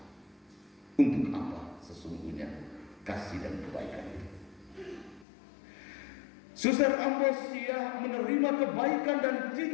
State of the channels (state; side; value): drops out; right; at 5.2 s